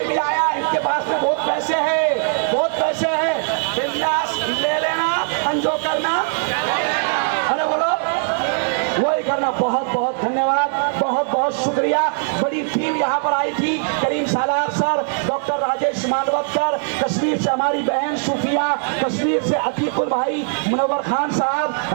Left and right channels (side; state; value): left; silent; 61 dB below the other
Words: भी आया, इनके पास में बहुत पैसे हैं, बहुत पैसे हैं, बिंदास ले लेना, अंजो करना, अरे बोलो वही करना। बहुत बहुत धन्यवाद, बहुत बहुत शुक्रिया। बड़ी टीम यहाँ पर आई थी, करीम सालार सर, डॉक्टर राजेश मानवतकर, कश्मीर से हमारी बहन सूफिया, कश्मीर से अतीकुल भाई, मुनव्वर खान साहब,